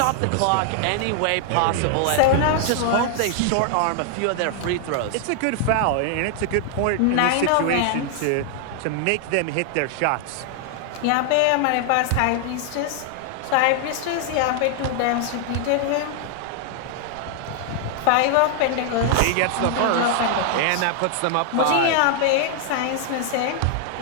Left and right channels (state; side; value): different; both; correlation 0.00